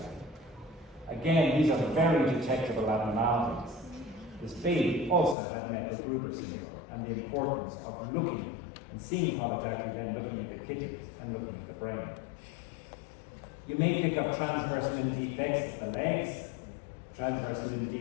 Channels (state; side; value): drops out; right; at 5.4 s